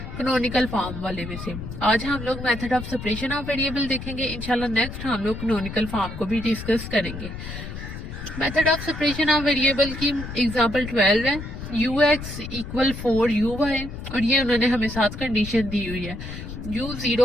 कैनोनिकल फॉर्म वाले में से। आज हम लोग method of separation of variable देखेंगे। इंशाल्लाह नेक्स्ट हम लोग कैनोनिकल फॉर्म को भी डिस्कस करेंगे। Method of separation of variable की एग्जाम्पल 12 है, ux इक्वल 4uy, और ये उन्होंने हमें साथ कंडीशन दी हुई है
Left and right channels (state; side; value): noise; left; rumble, 9 dB below the sound